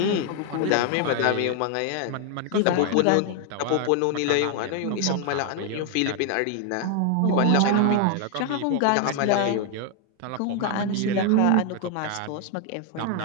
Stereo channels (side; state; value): both; different; correlation 0.00